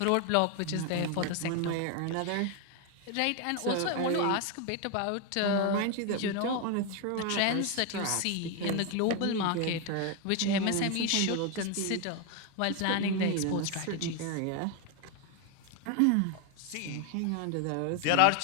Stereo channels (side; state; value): both; different; correlation 0.01